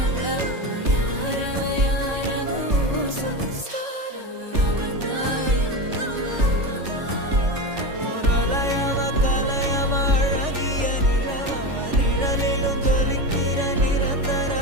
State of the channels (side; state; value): left; late; 3.5 ms